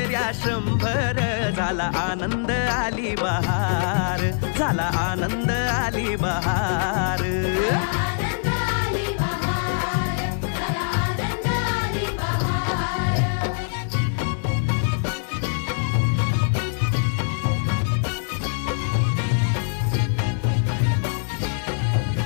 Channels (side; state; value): right; silent; digital silence